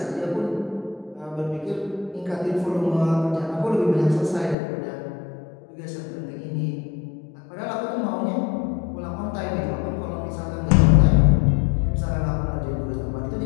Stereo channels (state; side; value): drops out; right; at 4.5 s